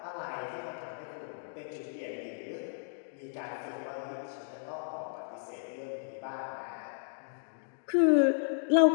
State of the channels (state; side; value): silent; right; digital silence